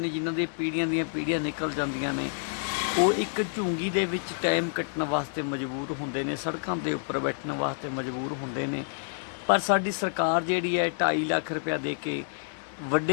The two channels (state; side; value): silent; right; 59 dB below the other